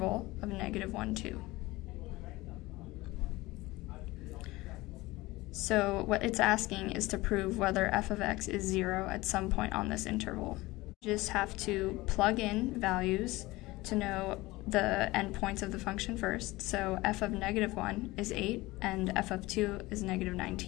of -1, 2. So what it's asking is to prove whether f of x is 0 at some point on this interval. You just have to plug in values to know the endpoints of the function first. So f of -1 is 8 and f of 2 is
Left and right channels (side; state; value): right; quieter; 20.1 dB